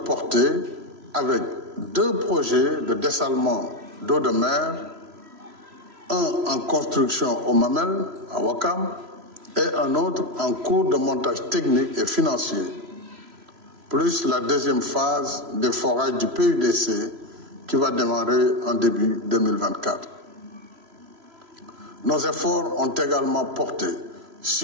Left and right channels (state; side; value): late; left; 3.0 ms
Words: avec 2 projets de dessalement d'eau de mer, un en construction au Mamel, à Ouakam, et un autre en cours de montage technique et financier, plus la deuxième phase des forages du PUDC qui va démarrer en début 2024. Nos efforts ont également porté